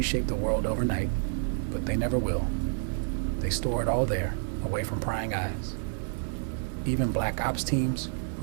the world overnight, but they never will. They store it all there, away from prying eyes. Even black ops teams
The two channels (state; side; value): silent; left; digital silence